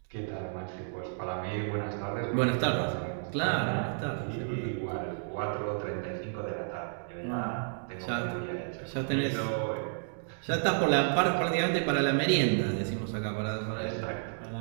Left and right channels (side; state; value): left; silent; digital silence